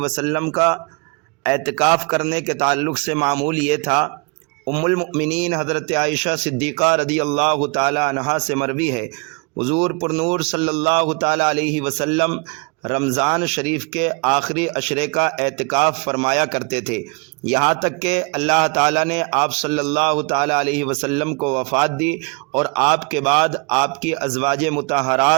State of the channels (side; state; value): left; quieter; 32.0 dB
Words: کا اعتکاف کرنے کے تعلق سے معمول یہ تھا۔ ام المؤمنین حضرت عائشہ صدیقہ رضی اللہ تعالیٰ عنہا سے مروی ہے، حضور پرنور صلی اللہ تعالیٰ علیہ وسلم رمضان شریف کے آخری عشرے کا اعتکاف فرمایا کرتے تھے، یہاں تک کہ اللہ تعالیٰ نے آپ صلی اللہ تعالیٰ علیہ وسلم کو وفات دی اور آپ کے بعد آپ کی ازواج